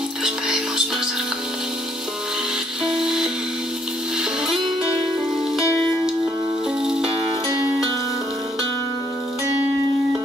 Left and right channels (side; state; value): both; normal; correlation 0.69